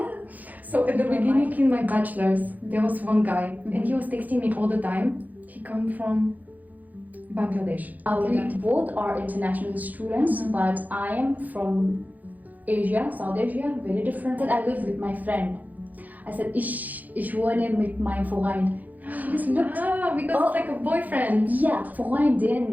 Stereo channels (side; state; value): left; late; 0.081 ms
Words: So at the beginning in my bachelor's, there was one guy, and he was texting me all the time. He come from Bangladesh. We both are international students, but I am from Asia, South Asia, very different. I live with my friend. I said, ich wohne mit meinem Freund. He just looked. Because it's like a boyfriend. Yeah,